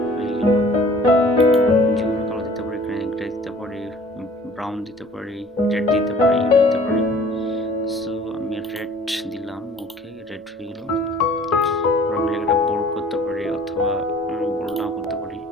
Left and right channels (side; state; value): both; normal; correlation 0.50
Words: হয়ে গেল। যে কোনো কালার দিতে পারি, গ্রে দিতে পারি, ব্রাউন দিতে পারি, রেড দিতে পারি, ইয়েলো দিতে পারি। সো আমি রেড দিলাম। ওকে, রেড হয়ে গেল। আমি একটা বোল্ড করতে পারি অথবা বোল্ড নাও করতে পারি।